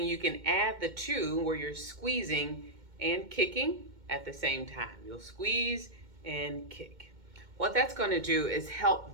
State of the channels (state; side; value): late; left; 2.2 ms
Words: you can add the two where you're squeezing and kicking at the same time. You'll squeeze and kick. What that's going to do is help